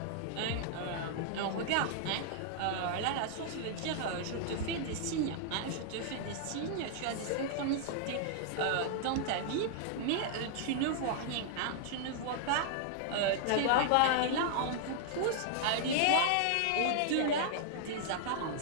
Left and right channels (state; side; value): different; both; correlation -0.01